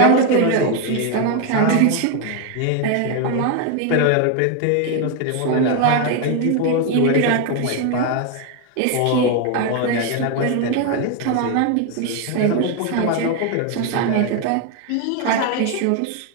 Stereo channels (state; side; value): different; both; correlation 0.01